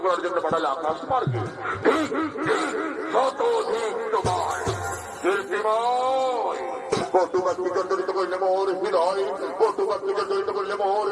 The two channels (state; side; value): identical; both; correlation 1.00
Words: করার জন্য পাঠালে আকাশ মার্গে শতধিক তোমার কীর্তিময় কটুকাত্মী জর্জরিত করলে মোর হৃদয় কটুকাত্মী জর্জরিত করলে মোর